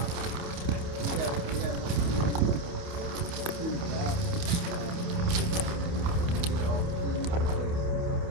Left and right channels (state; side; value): late; left; 28 ms